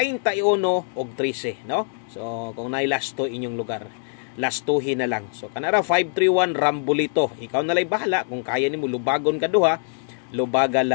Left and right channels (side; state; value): right; silent; digital silence